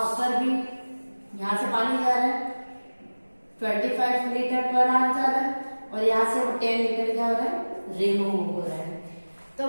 ऊपर भी यहाँ से पानी जा रहा है 25 लीटर पर आवर जा रहा है, और यहाँ से वो 10 लीटर क्या हो रहा है, रिमूव हो रहा है। तो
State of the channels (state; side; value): inverted; both; correlation -1.00